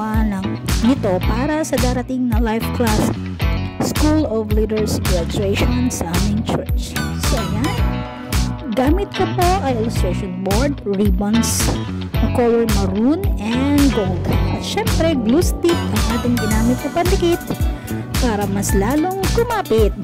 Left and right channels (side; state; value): both; identical; correlation 1.00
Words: nito para sa darating na life class School of Leaders graduation sa aming church. So ayan, gamit ko po ay illustration board, ribbons na color maroon and gold. At syempre glue stick ang ating ginamit na pandikit para mas lalong kumapit.